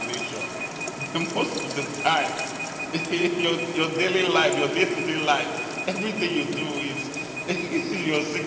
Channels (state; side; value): identical; both; correlation 1.00